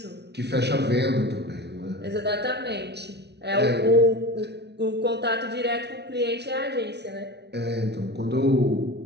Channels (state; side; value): late; left; 0.49 ms